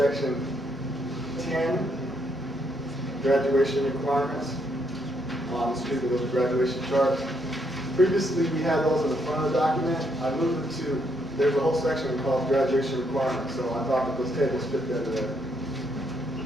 10, graduation requirements. Excuse me, those graduation charts. Previously, we had those in the front of the document. I moved it to, there's a whole section called graduation requirements, so I thought that those tables fit better there.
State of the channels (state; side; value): normal; both; correlation 0.74